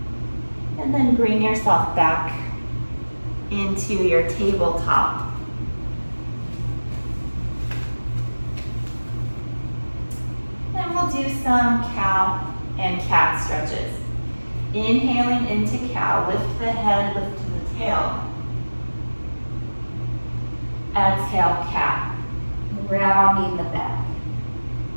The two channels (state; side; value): inverted; both; correlation -1.00